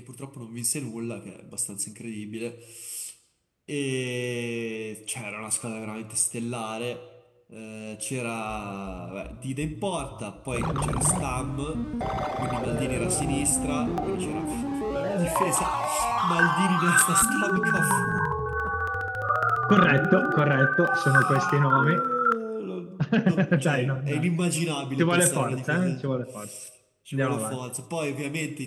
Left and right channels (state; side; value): identical; both; correlation 1.00